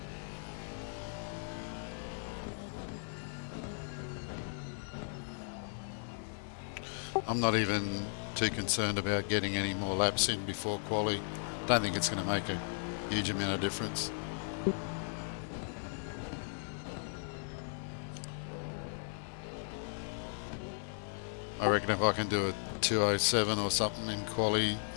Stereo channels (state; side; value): silent; right; digital silence